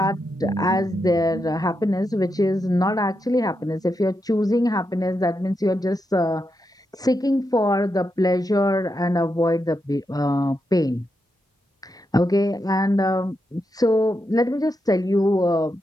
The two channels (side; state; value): both; normal; correlation 0.85